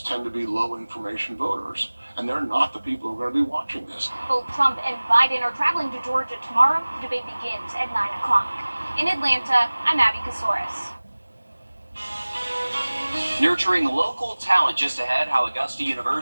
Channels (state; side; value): inverted; both; correlation -1.00